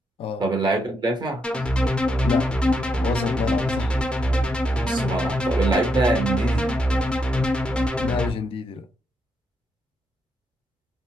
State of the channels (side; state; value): both; normal; correlation 0.81